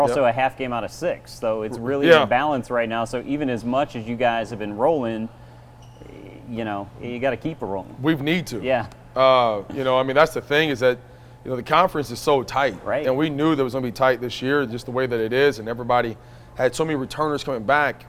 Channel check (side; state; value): both; identical; correlation 1.00